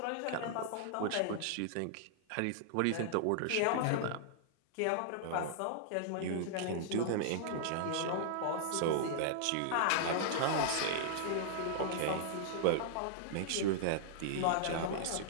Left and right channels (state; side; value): different; both; correlation -0.01